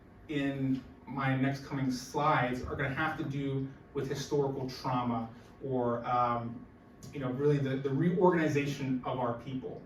in my next coming slides are going to have to do with historical trauma, or really the reorganization of our people.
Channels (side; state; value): both; identical; correlation 1.00